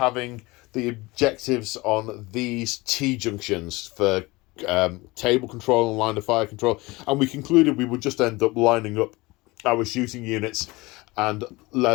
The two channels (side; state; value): right; quieter; 22.3 dB